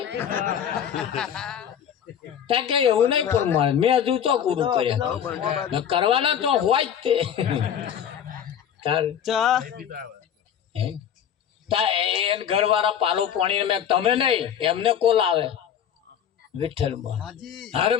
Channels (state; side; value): quieter; right; 8.9 dB